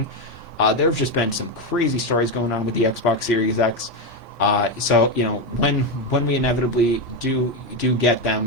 There have just been some crazy stories going on with the Xbox Series X. So when we inevitably do get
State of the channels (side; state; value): both; normal; correlation 0.10